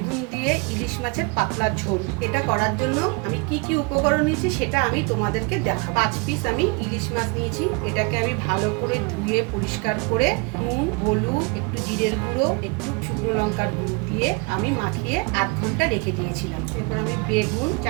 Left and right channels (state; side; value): quieter; left; 29.7 dB